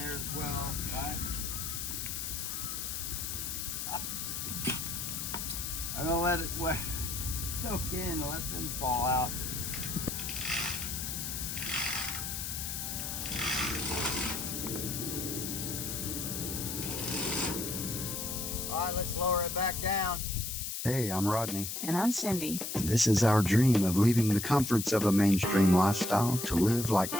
as well, right? I'm gonna let it soak in and let them fall out. All right, let's lower it back down. Hey, I'm Rodney. And I'm Cyndi. And this is our dream of leaving the comforts of a mainstream lifestyle to live like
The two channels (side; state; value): left; noise; hiss, 4 dB below the sound